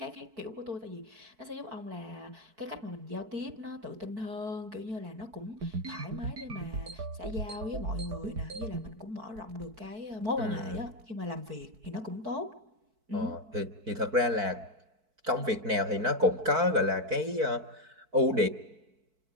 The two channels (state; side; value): late; left; 4.6 ms